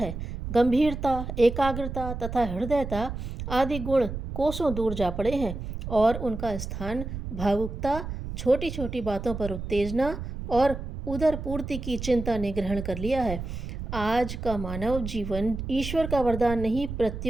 गंभीरता, एकाग्रता तथा हृदयता आदि गुण कोसों दूर जा पड़े हैं और उनका स्थान भावुकता, छोटी छोटी बातों पर उत्तेजना और उदर पूर्ति की चिंता ने ग्रहण कर लिया है। आज का मानव जीवन ईश्वर का वरदान नहीं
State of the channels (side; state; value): right; noise; rumble, 7 dB below the sound